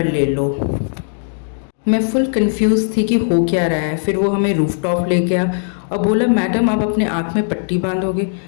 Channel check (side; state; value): right; silent; digital silence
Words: ले लो। मैं फुल कंफ्यूज थी कि हो क्या रहा है। फिर वो हमें रूफ टॉप ले गया और बोला मैडम आप अपने आँख में पट्टी बांधोगे।